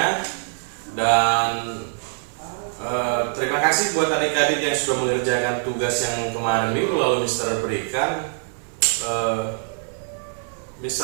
Dan terima kasih buat adik-adik yang sudah mengerjakan tugas yang kemarin minggu lalu Mister berikan.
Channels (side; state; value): left; silent; 63 dB below the other